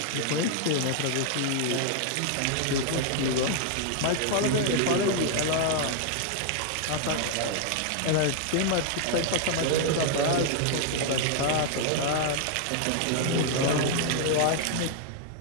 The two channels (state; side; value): different; both; correlation 0.00